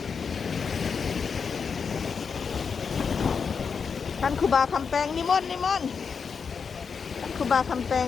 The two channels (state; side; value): quieter; right; 5.9 dB